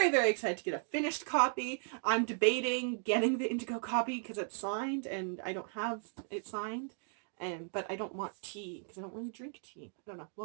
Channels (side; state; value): left; silent; 54 dB below the other